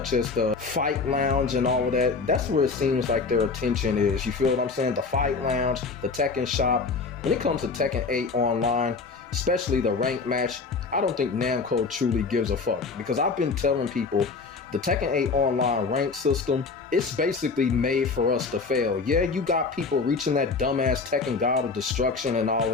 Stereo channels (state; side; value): quieter; right; 4.5 dB